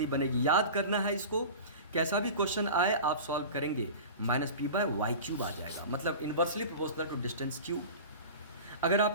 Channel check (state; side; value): inverted; both; correlation -0.34